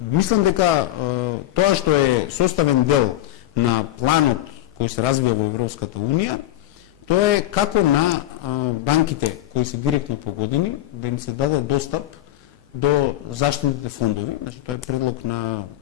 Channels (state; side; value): quieter; right; 14.4 dB